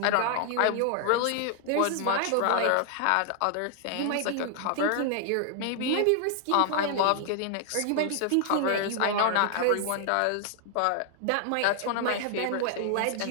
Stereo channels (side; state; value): both; different; correlation 0.00